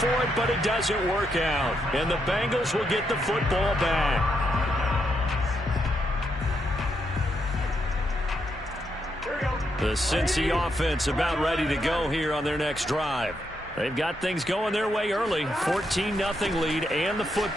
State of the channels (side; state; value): both; normal; correlation 0.80